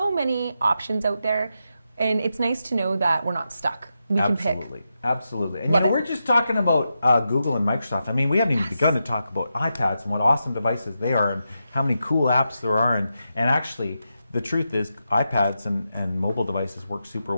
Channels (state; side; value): inverted; both; correlation -0.87